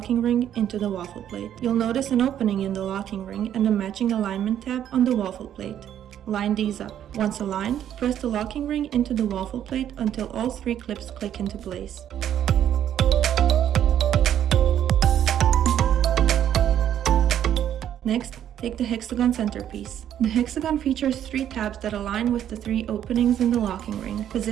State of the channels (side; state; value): left; quieter; 10.4 dB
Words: ring into the waffle plate. You'll notice an opening in the locking ring and a matching alignment tab on the waffle plate. Line these up. Once aligned, press the locking ring into the waffle plate until all three clips click into place. Next, take the hexagon centerpiece. The hexagon features three tabs that align with the three openings in the locking ring.